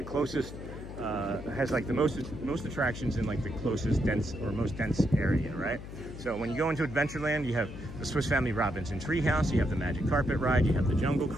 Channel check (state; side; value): noise; left; hum, 11 dB below the sound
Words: closest, has like the most attractions in like the closest most dense area, right? So when you go into Adventureland, you have the Swiss Family Robinson Treehouse, you have the Magic Carpet Ride, you have the Jungle